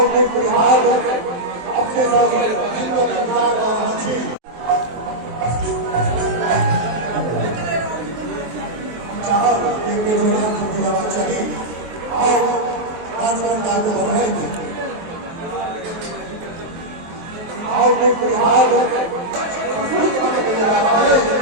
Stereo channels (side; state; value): left; late; 23 ms